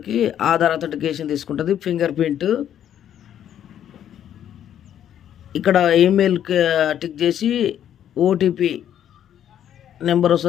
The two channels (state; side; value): quieter; right; 10.2 dB